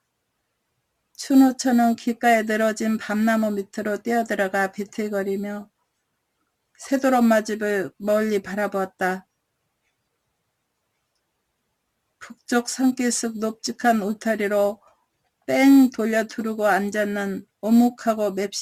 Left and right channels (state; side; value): identical; both; correlation 1.00